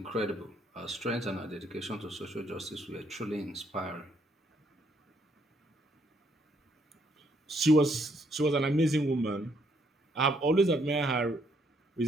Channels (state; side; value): normal; both; correlation 0.70